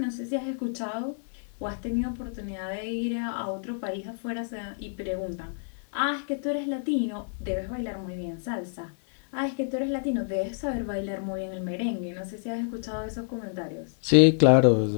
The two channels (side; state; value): right; silent; 59 dB below the other